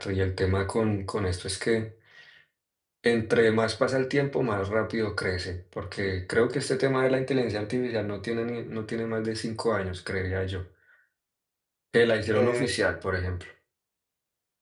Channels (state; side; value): identical; both; correlation 1.00